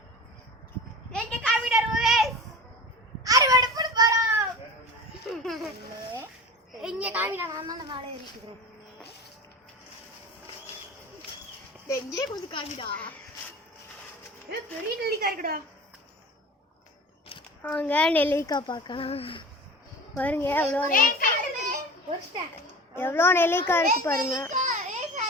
எங்க காமிடர் வியூவர்ஸ், அறுவடை பண்ண போறோம். இங்க காமிடா, நான் தான் மேலே ஏறிக்கிறேன். எங்கே கொஞ்சம் காமிடா. பெரிய நெல்லிக்காய் இருக்குடா. வாங்க நெல்லிக்காய் பார்க்கலாம். பாருங்க எவ்வளோ நெல்லிக்காய் இருக்கு பாருங்க.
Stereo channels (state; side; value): normal; both; correlation 0.35